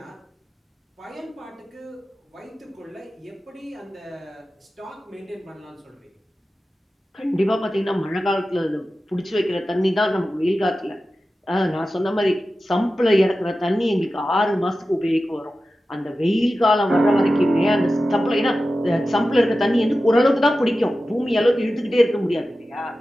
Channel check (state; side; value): normal; both; correlation 0.94